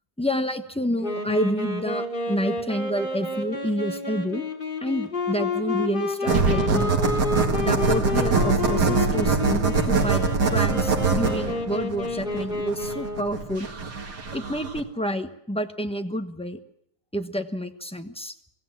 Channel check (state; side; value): normal; both; correlation 0.22